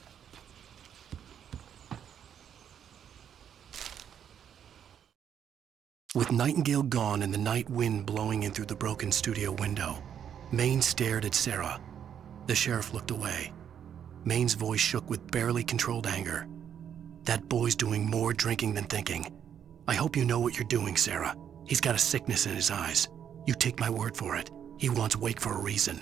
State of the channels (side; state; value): left; quieter; 8.8 dB